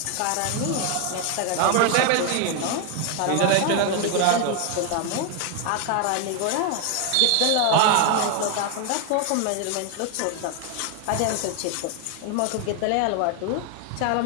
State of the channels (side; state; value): both; different; correlation 0.01